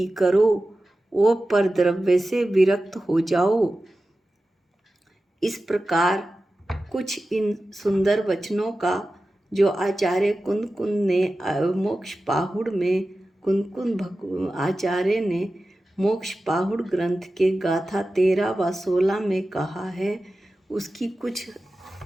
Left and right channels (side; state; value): both; normal; correlation 0.94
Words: करो और पर द्रव्य से विरक्त हो जाओ। इस प्रकार कुछ इन सुंदर वचनों का जो आचार्य कुंद ने मोक्ष पाहुड़ में आचार्य ने मोक्ष पाहुड़ ग्रंथ के गाथा 13 व 16 में कहा है, उसकी कुछ